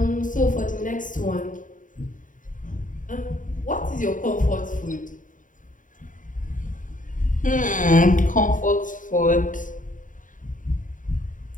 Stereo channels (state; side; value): late; right; 0.38 ms